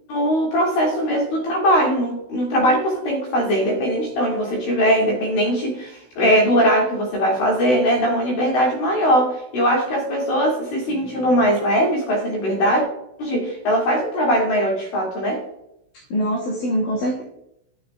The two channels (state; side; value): late; right; 16 ms